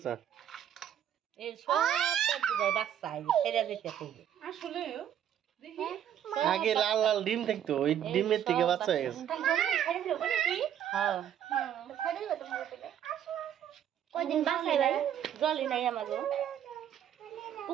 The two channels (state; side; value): quieter; left; 10.0 dB